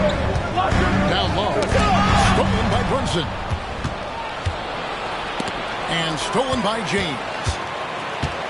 Down low. Stolen by Brunson. And stolen by James.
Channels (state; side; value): identical; both; correlation 1.00